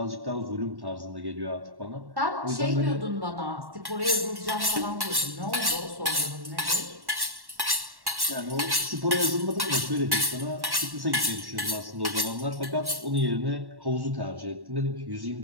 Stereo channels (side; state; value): left; late; 1.1 ms